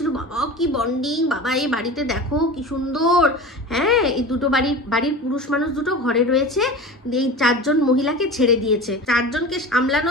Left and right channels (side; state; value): both; normal; correlation 0.32